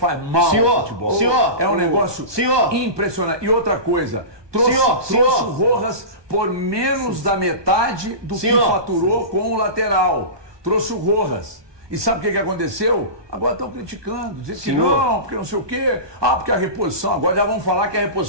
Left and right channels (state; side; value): late; left; 1.2 ms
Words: mal ao futebol. Senhor, é um negócio impressionante. E outra coisa, trouxe o Rojas por menos da metade do que faturou com o lateral. Trouxe o Rojas. E sabe o que aconteceu? Agora estão criticando, dizendo que não, porque não sei o quê. Porque a reposição, agora já vão falar que a